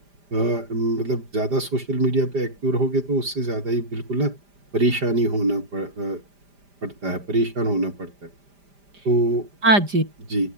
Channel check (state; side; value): late; left; 5.0 ms